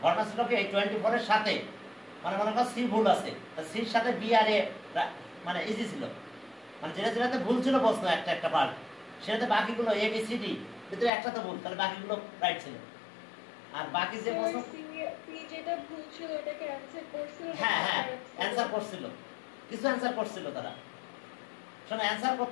ঘটনা ছিল কি, এই 24 এর সাথে মানে মনে করো সি ভুল আছে, সির সাথে বি আর এ মানে ইজি ছিল, মানে যেটাতে ভুল ছিল প্রশ্ন একটা পার্ট, সেটাতে বাকিগুলো এ বি সি ডি ভিতরে একটা তো ভুল, তাহলে বাকিগুলো রাইট ছিল। আর বাকি যে প্রশ্ন যেটা ভুল ছিল এটাকে অ্যানসার করছিল। হ্যাঁ হ্যাঁ, অ্যানসার করছিল, কিছু অ্যানসার করছিল তারা। শোনো, অ্যানসার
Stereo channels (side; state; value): right; drops out; at 11.1 s